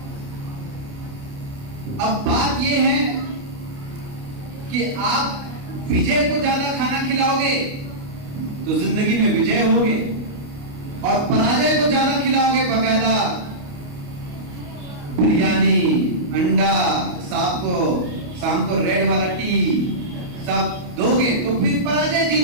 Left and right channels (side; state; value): left; late; 29 ms